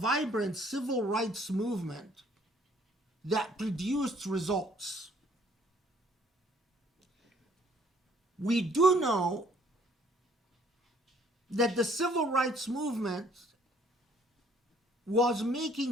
civil rights movement that produced results. We do know that the civil rights movement was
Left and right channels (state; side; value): normal; both; correlation 0.61